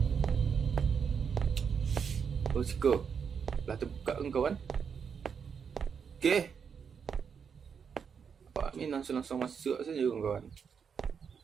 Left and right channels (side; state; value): left; quieter; 6.6 dB